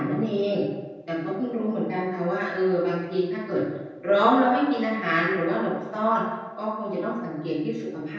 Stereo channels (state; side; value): identical; both; correlation 1.00